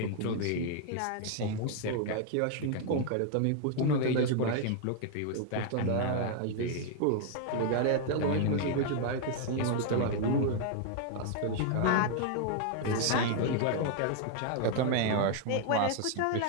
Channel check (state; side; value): different; both; correlation 0.00